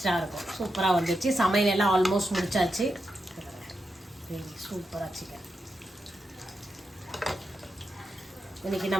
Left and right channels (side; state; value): both; normal; correlation 0.87